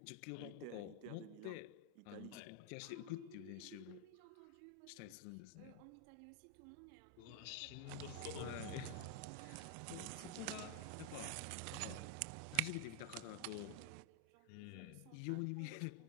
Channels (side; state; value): both; different; correlation 0.00